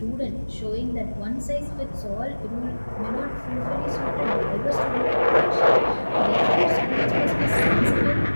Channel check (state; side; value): inverted; both; correlation -1.00